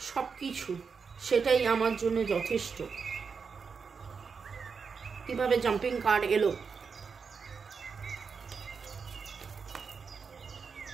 সবকিছু সেটাই আমার জন্য যথেষ্ট। কিভাবে জাম্পিং কার্ড এলো,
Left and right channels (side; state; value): left; quieter; 5.6 dB